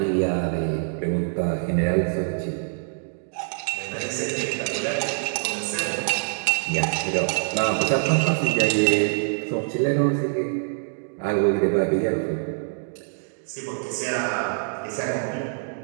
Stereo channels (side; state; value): left; silent; digital silence